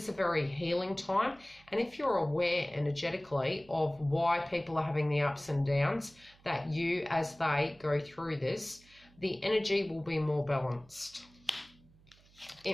a very healing time, and if you're aware energetically of why people are having the ups and downs, that you, as they go through this, the energy will be more balanced.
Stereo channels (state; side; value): noise; right; hum, 28 dB below the sound